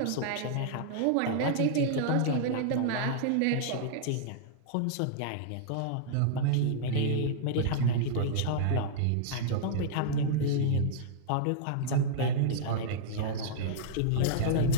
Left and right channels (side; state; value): both; different; correlation -0.02